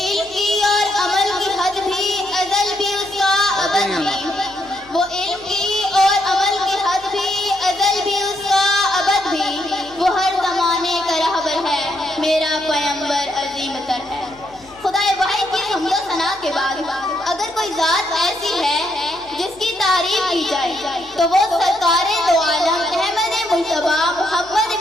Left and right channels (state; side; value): noise; left; hum, 26 dB below the sound